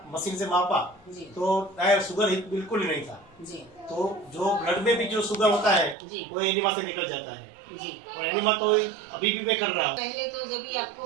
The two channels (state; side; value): drops out; left; at 6.0 s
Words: मशीन से मापा जी तो शुगर ही बिल्कुल ही नहीं था। जी तो जो ब्लड में भी जो शुगर होता है जी। वो एनिमा से निकल जाता है जी। और एनिमा तो अभी भी मैं कर रहा हूँ। पहले तो जब भी आपको